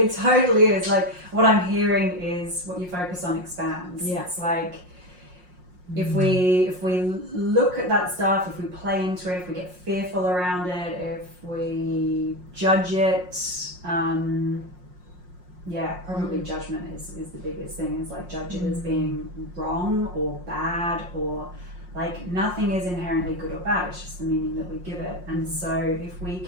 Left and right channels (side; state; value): left; late; 5.5 ms